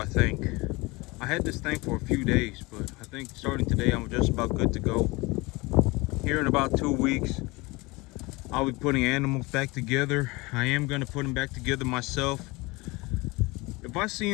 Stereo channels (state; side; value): quieter; right; 23.9 dB